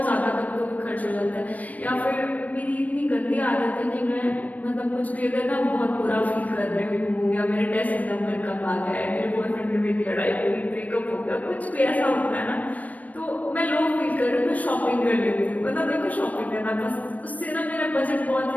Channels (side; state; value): right; late; 0.073 ms